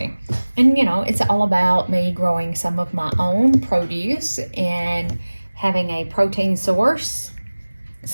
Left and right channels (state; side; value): inverted; both; correlation -1.00